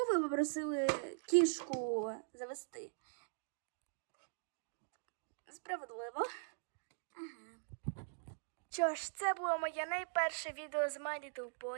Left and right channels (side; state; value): left; silent; digital silence